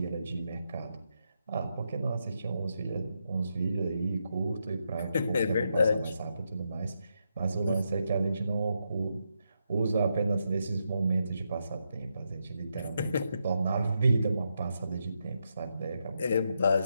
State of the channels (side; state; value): both; inverted; correlation -0.83